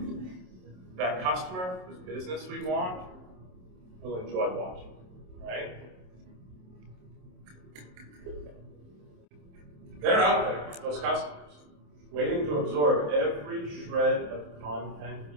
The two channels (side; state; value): left; late; 27 ms